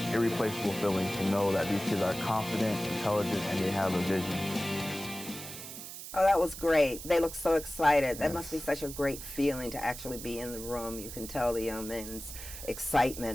irreplaceable feeling to know that these kids are confident, intelligent, and they have a vision. Oh, that was great. They look so excited. That must be such a great feeling to actually be in the room. You can tell the young men's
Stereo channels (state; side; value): noise; right; hiss, 11 dB below the sound